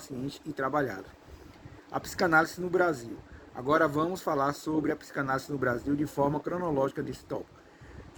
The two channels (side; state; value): both; identical; correlation 1.00